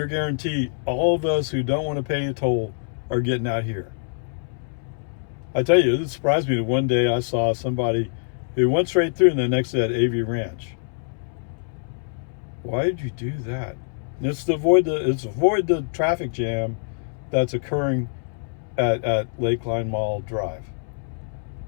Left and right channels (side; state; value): right; silent; 62 dB below the other